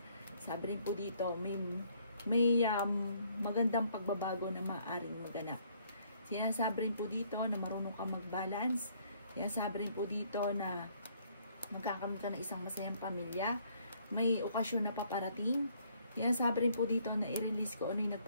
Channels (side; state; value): both; inverted; correlation -0.65